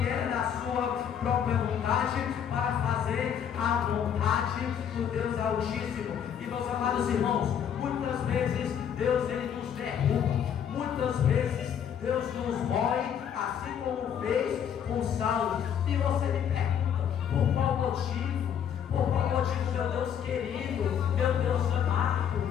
era da sua própria vontade para fazer a vontade do Deus Altíssimo. E meus amados irmãos, muitas vezes Deus ele nos derruba, muitas vezes Deus nos mói, assim como fez com Saulo. E você me pergunta: por qual motivo? Por qual motivo, meu Deus querido, meu Deus amado,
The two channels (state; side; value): quieter; right; 8.6 dB